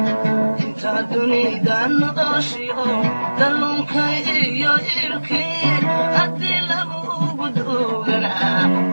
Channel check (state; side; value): inverted; both; correlation -1.00